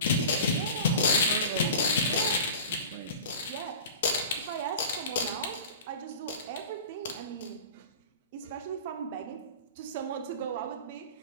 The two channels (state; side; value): inverted; both; correlation -0.37